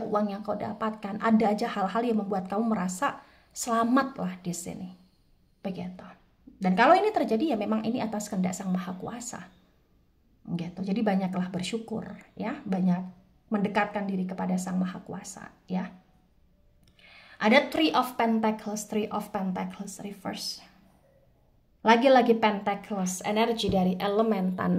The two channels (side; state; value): both; identical; correlation 1.00